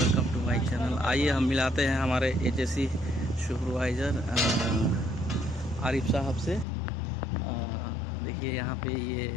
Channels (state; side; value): drops out; right; at 6.7 s